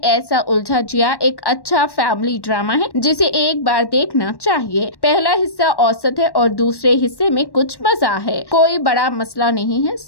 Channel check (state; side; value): late; right; 1.1 ms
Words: उलझा जिया एक अच्छा फैमिली ड्रामा है जिसे एक बार देखना चाहिए। पहला हिस्सा औसत है और दूसरे हिस्से में कुछ मजा है। कोई बड़ा मसला नहीं है,